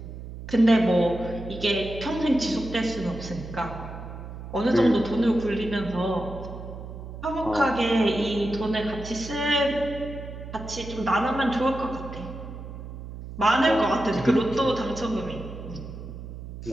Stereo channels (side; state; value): right; noise; hum, 11 dB below the sound